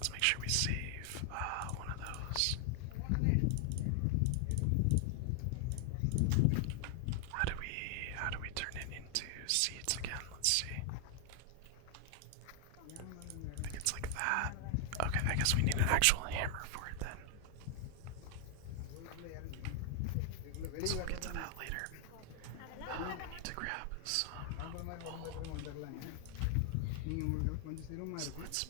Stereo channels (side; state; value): both; different; correlation 0.00